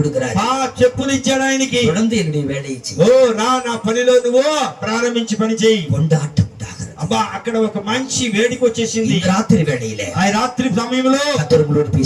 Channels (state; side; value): identical; both; correlation 1.00